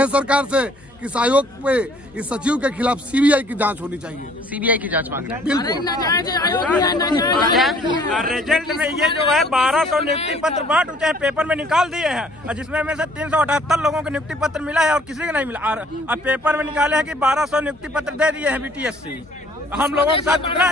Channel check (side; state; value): left; noise; hum, 28 dB below the sound